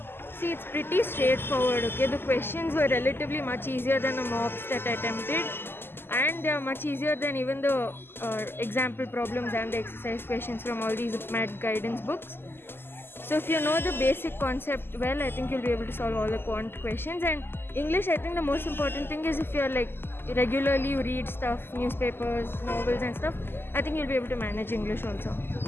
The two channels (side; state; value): right; late; 0.11 ms